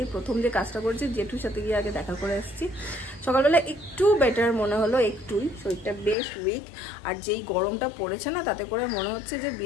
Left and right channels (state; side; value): drops out; right; at 6.2 s